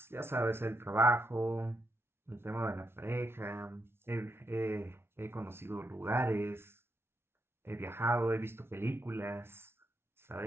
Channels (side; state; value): left; late; 0.12 ms